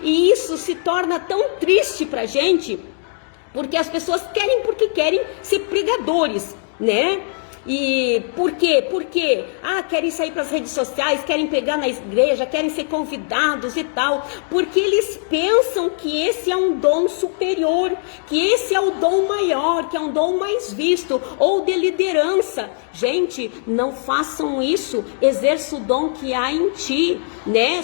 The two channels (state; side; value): silent; right; 66 dB below the other